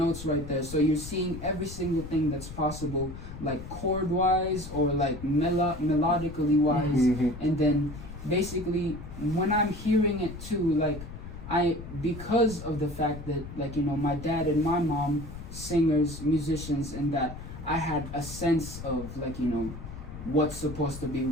right there, so you're seeing every single thing that's possible, like chord wise or like melodically wise. And then basically when I'm hearing it too, like because of the fact that, like, you know, my dad and my mom singers, musicians, and that I had a sense of like, you know, what's supposed to be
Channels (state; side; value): noise; left; rumble, 11 dB below the sound